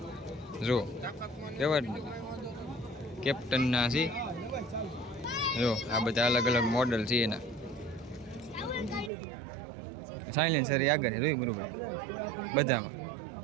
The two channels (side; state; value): left; drops out; at 9.1 s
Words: જો. કહેવાય ને કેપ્ટનના છે. જો આ બધા અલગ અલગ મોડલ છે એના. સાયલેન્સર આગળ છે જોઈ મુરુભાઈ બધામાં.